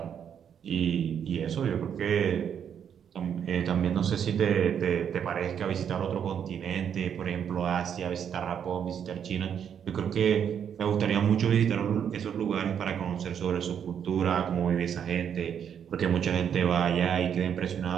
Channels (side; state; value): left; quieter; 8.3 dB